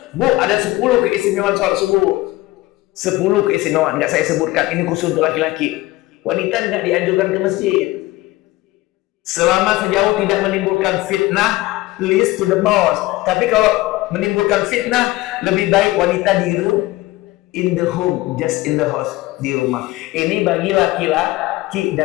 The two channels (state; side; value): quieter; right; 19.0 dB